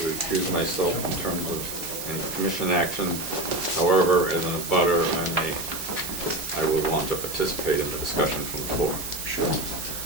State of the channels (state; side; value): noise; right; hiss, 8 dB below the sound